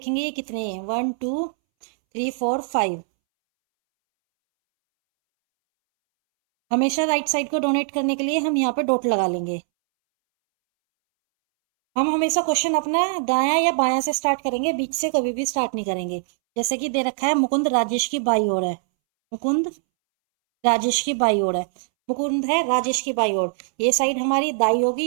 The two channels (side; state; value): left; silent; 64 dB below the other